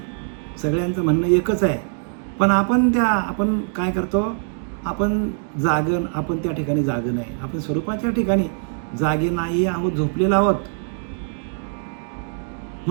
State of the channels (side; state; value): left; silent; digital silence